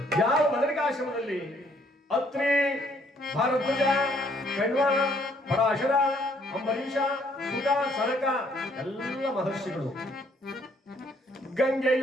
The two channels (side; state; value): both; normal; correlation 0.66